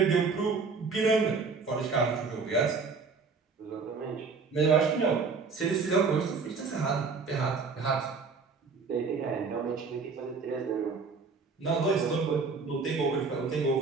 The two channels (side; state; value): left; quieter; 4.7 dB